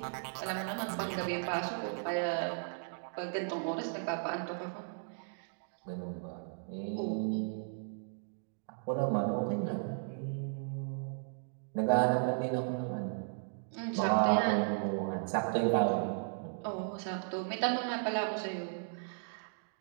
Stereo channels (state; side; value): silent; left; digital silence